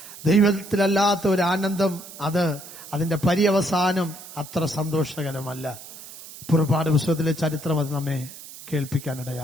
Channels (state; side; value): noise; right; hiss, 15 dB below the sound